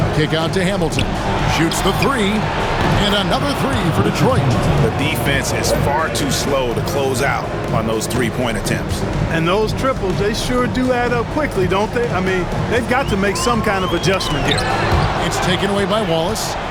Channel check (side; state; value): both; identical; correlation 1.00